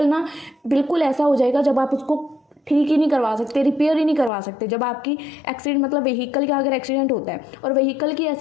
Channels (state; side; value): drops out; right; at 4.3 s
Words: ना बिल्कुल ऐसा हो जाएगा जब आप उसको ठीक ही नहीं करवा सकते, रिपेयर ही नहीं करवा सकते। जब आपकी एक्सीडेंट, मतलब व्हीकल का अगर एक्सीडेंट होता है और व्हीकल की